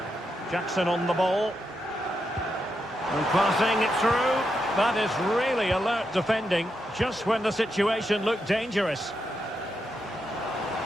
Jackson on the ball. And passing it through. That is really alert defending, just when the situation looked dangerous.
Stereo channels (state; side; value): normal; both; correlation 0.84